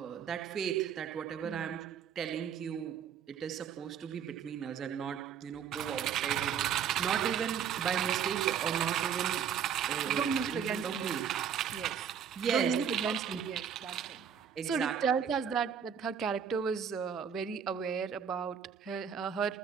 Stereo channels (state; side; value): quieter; left; 7.9 dB